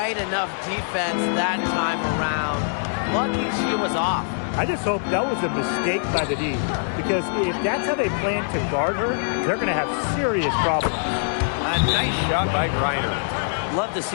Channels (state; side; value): silent; right; digital silence